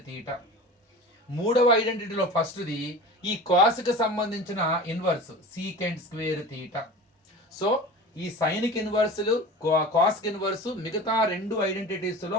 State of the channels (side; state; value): both; normal; correlation 0.35